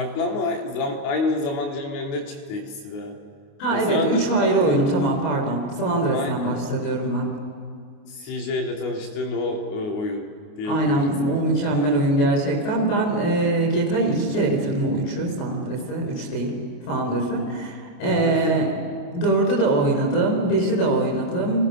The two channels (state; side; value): late; right; 28 ms